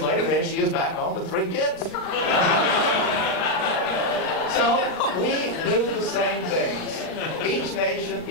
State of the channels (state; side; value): late; right; 38 ms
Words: later, there she is back home with 3 kids. So we do the same things. Each nation,